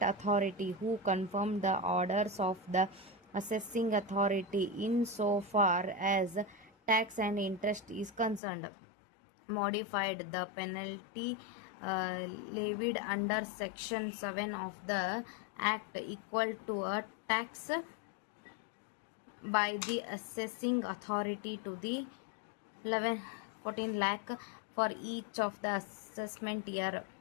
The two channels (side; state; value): right; drops out; at 8.4 s